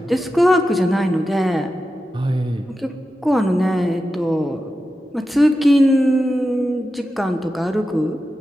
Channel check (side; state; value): both; normal; correlation 0.91